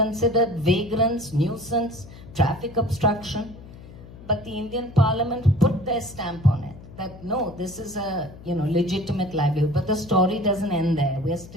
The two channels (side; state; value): left; noise; hum, 17 dB below the sound